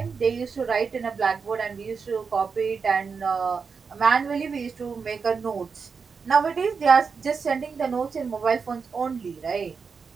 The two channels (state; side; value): quieter; left; 5.5 dB